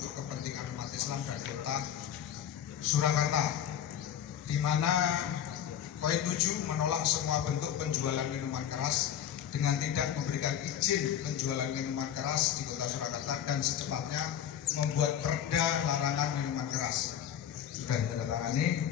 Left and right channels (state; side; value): quieter; right; 9.8 dB